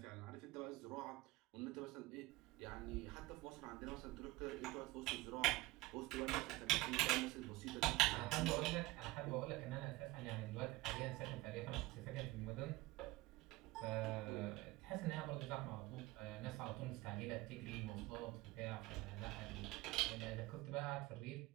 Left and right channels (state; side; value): quieter; left; 20.1 dB